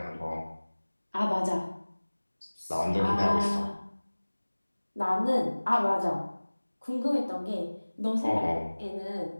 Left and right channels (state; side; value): inverted; both; correlation -1.00